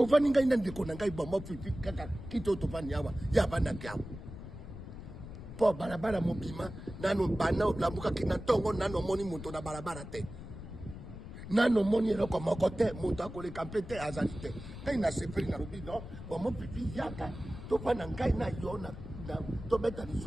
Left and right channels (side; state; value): left; noise; rumble, 11 dB below the sound